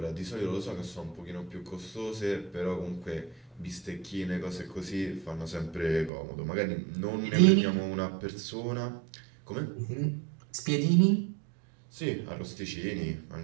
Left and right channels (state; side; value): drops out; left; at 6.1 s